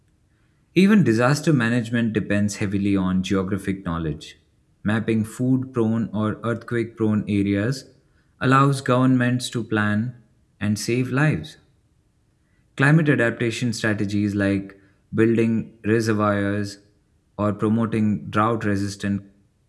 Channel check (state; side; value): identical; both; correlation 1.00